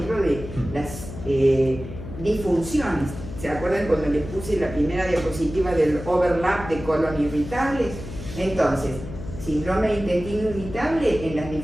de las disfunciones. ¿Se acuerdan cuando les puse la primera diapositiva del overlap de colon irritable? Entonces, síndrome de intestino irritable en las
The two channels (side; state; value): left; noise; hum, 11 dB below the sound